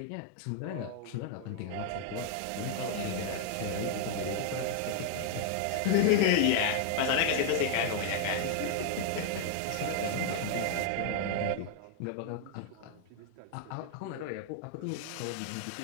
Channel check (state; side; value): different; both; correlation 0.00